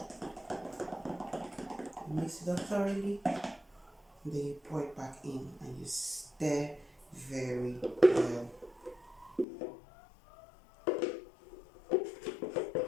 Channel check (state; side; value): drops out; right; at 9.5 s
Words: mix it up thoroughly, and then you pour it back in and you stir very well.